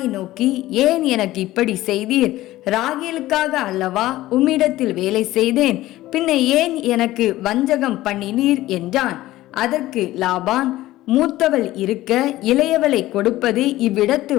நோக்கி, ஏன் எனக்கு இப்படி செய்தீர்? ராகேலுக்காக அல்லவா உம்மிடத்தில் வேலை செய்தேன், பின்ன ஏன் எனக்கு வஞ்சகம் பண்ணினீர் என்றான். அதற்கு லாபான், மூத்தவள் இருக்க இளையவளை கொடுப்பது இவ்விடத்து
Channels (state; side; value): quieter; right; 16.2 dB